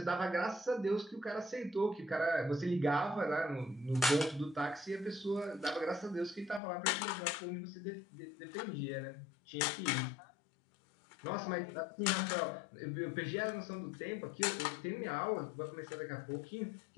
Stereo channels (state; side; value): drops out; right; at 6.6 s